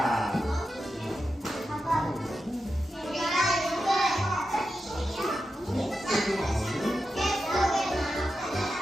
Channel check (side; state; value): both; normal; correlation 0.89